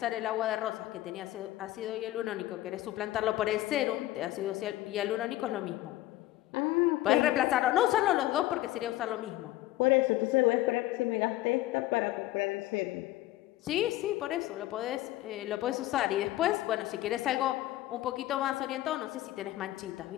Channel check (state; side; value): quieter; right; 15.9 dB